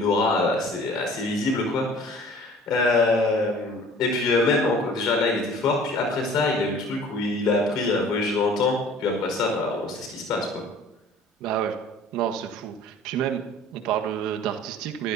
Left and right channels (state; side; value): normal; both; correlation 0.48